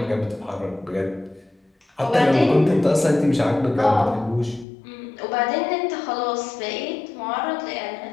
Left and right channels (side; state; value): right; drops out; at 4.7 s